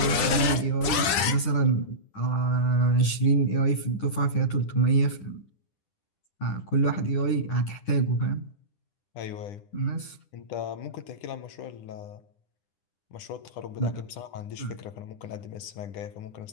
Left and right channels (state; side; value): late; right; 10 ms